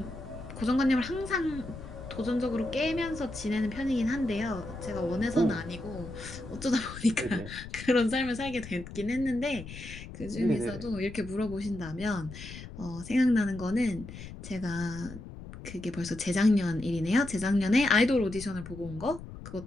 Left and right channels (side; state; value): left; noise; rumble, 12 dB below the sound